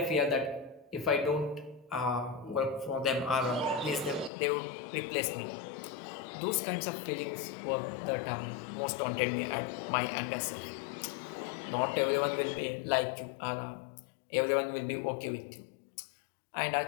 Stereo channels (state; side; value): drops out; right; at 4.3 s